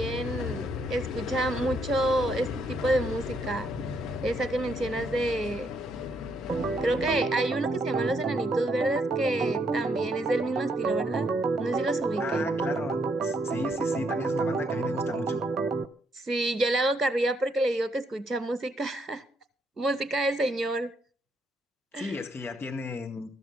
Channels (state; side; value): normal; both; correlation 0.73